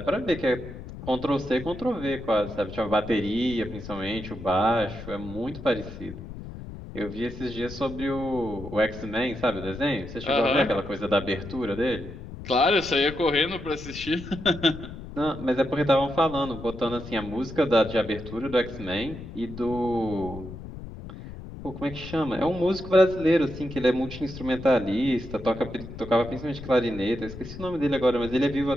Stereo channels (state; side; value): noise; left; rumble, 12 dB below the sound